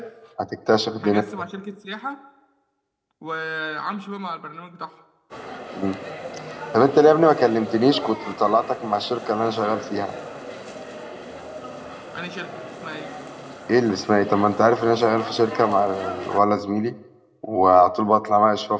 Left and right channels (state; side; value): identical; both; correlation 1.00